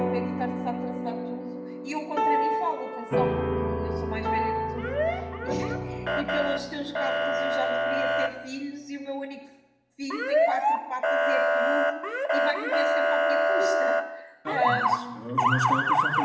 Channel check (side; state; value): both; identical; correlation 1.00